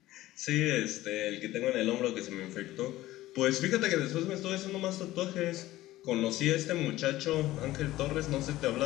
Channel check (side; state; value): right; quieter; 16.2 dB